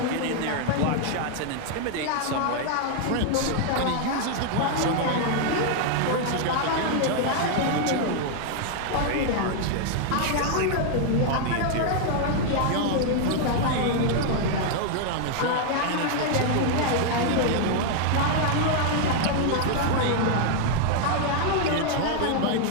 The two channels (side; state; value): both; different; correlation 0.00